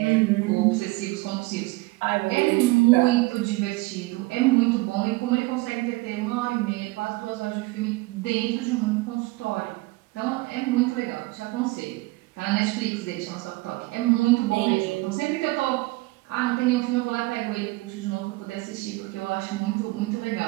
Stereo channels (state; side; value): quieter; left; 21.9 dB